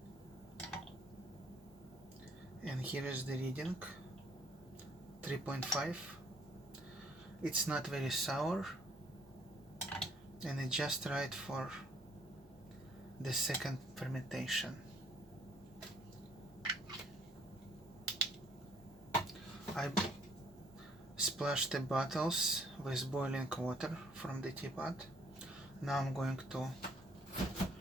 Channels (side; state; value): both; normal; correlation 0.63